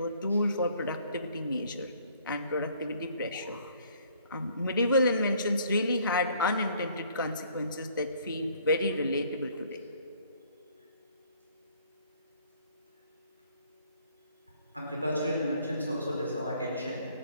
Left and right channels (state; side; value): inverted; both; correlation -0.60